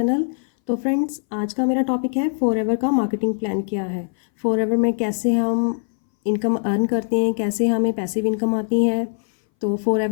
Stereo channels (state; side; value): silent; right; 62 dB below the other